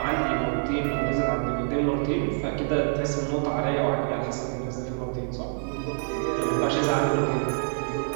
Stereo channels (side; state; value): left; silent; 61 dB below the other